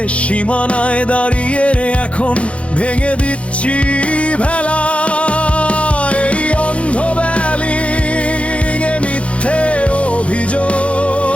সীমানায় দাঁড়িয়ে এখন ভেঙে দিচ্ছি ভেলা। এই অন্ধ ব্যালিং এ মিথ্যে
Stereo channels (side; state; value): right; late; 0.062 ms